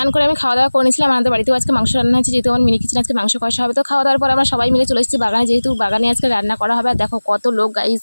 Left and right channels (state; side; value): inverted; both; correlation -1.00